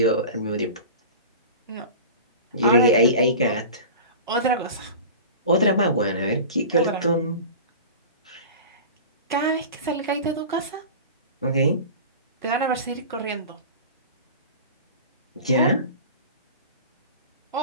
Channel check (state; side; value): inverted; both; correlation -0.34